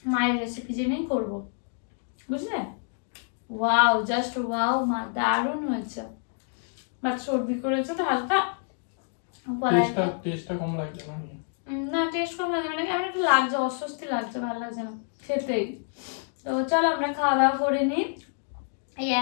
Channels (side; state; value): right; silent; 60 dB below the other